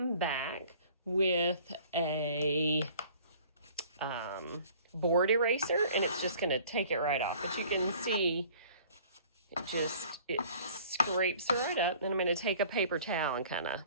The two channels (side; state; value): both; inverted; correlation -0.51